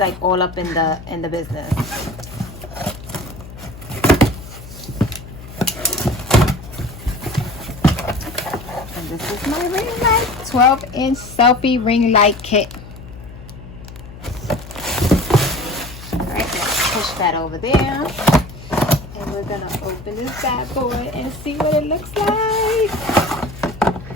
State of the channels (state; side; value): noise; left; hum, 15 dB below the sound